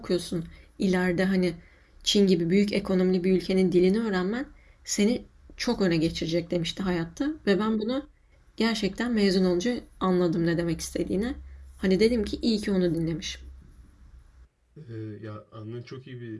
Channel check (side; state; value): both; identical; correlation 1.00